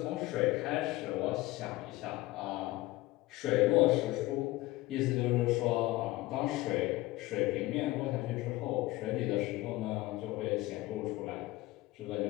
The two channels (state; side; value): quieter; right; 18.9 dB